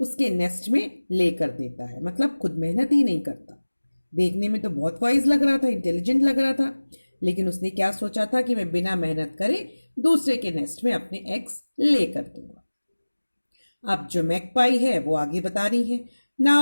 नेस्ट में ले कर देता है. मतलब खुद मेहनत ही नहीं करता. देखने में तो बहुत वाइज लग रहा था, इंटेलिजेंट लग रहा था, लेकिन उसने क्या सोचा था कि मैं बिना मेहनत करे दूसरे के नेस्ट में अपने एग्स ले कर दूंगा. अब जो मैकपाई है वो आगे बता रही है.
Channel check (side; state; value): both; inverted; correlation -1.00